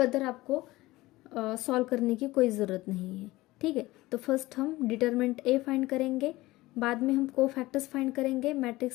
आपको सॉल्व करने की कोई ज़रूरत नहीं है। ठीक है, तो फर्स्ट हम डिटर्मिनेंट ए फाइंड करेंगे, बाद में हम को फैक्टर्स फाइंड करेंगे,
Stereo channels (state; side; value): quieter; right; 18.9 dB